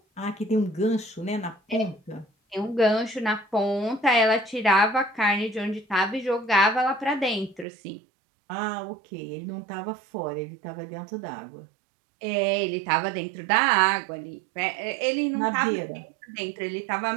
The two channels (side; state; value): left; drops out; at 7.7 s